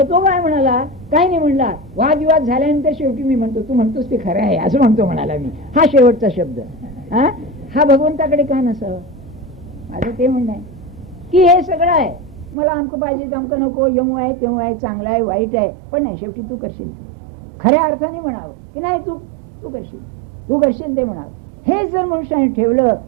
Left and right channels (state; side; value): drops out; left; at 12.6 s